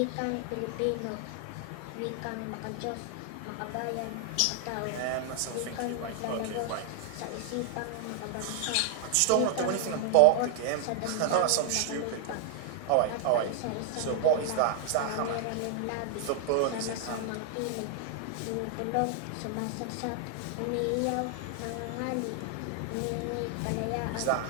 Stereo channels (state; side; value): different; both; correlation 0.00